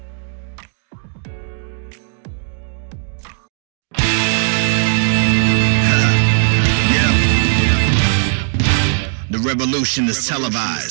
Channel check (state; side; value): silent; left; digital silence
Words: The revolution is